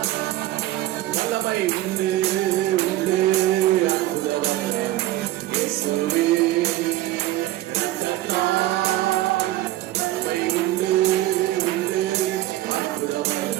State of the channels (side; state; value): left; quieter; 15.7 dB